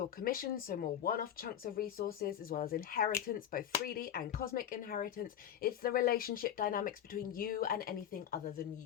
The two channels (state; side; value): quieter; right; 10.3 dB